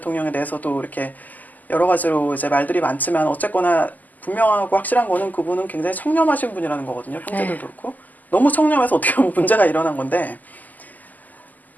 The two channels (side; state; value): right; late; 0.082 ms